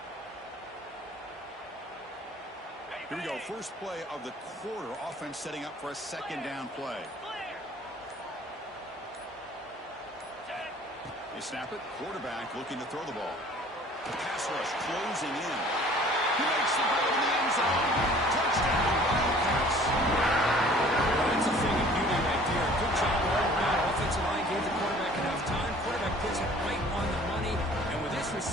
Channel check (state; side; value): normal; both; correlation 0.51